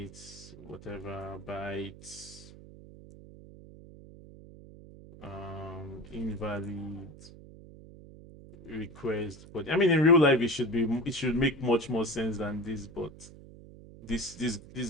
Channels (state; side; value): noise; right; hum, 18 dB below the sound